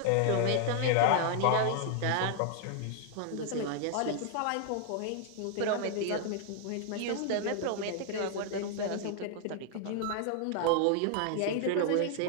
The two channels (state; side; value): different; both; correlation 0.00